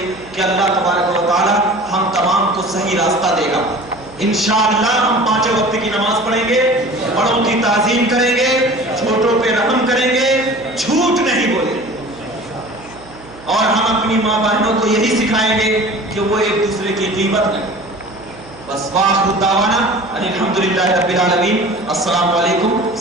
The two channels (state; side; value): noise; right; hum, 21 dB below the sound